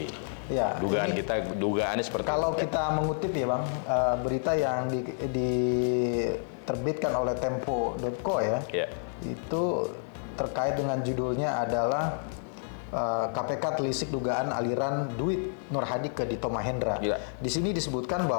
Ya, dugaannya seperti kalau kita mengutip ya Bang, berita yang diterbitkan oleh Tempo.co ya, itu terkait dengan judulnya adalah KPK telisik dugaan aliran duit Nur Hadi ke Dito Mahendra. Di sini disebutkan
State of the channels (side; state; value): right; silent; digital silence